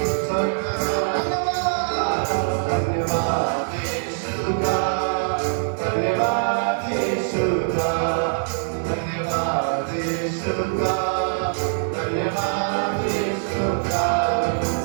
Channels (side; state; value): left; silent; 63 dB below the other